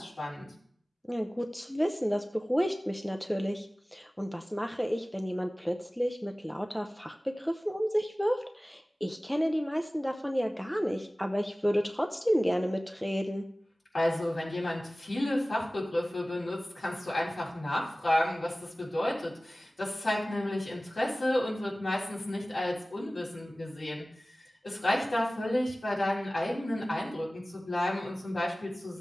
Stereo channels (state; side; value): normal; both; correlation 0.98